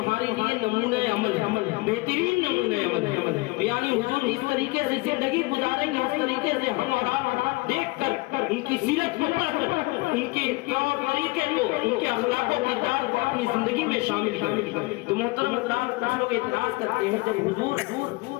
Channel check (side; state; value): right; quieter; 23.7 dB